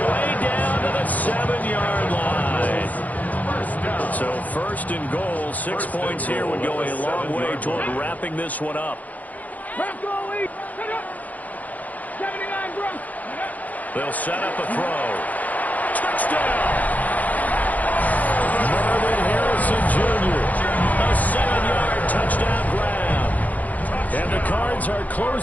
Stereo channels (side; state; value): right; late; 0.077 ms